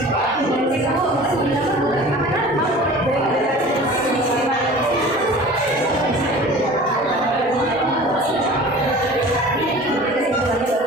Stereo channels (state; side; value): normal; both; correlation 0.42